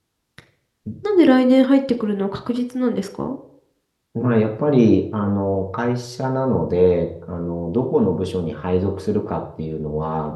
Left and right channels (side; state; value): both; identical; correlation 1.00